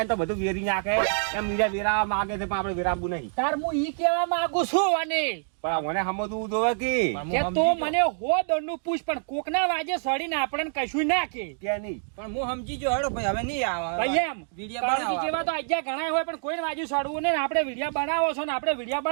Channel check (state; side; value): silent; left; digital silence